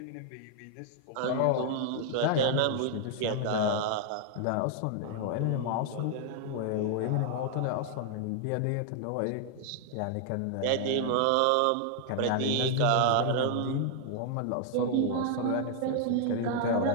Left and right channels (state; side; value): different; both; correlation 0.00